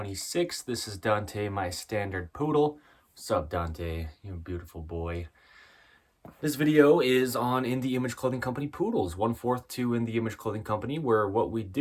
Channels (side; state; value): both; identical; correlation 1.00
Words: This is Dante, my standard poodle. What's up, Dante? You beautiful boy. This video is on In the Image Clothing Company poodles, 1/4 to In the Image Clothing Company, where what we